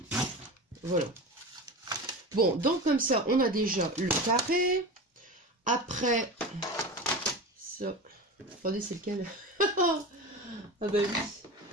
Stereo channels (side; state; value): both; normal; correlation 0.28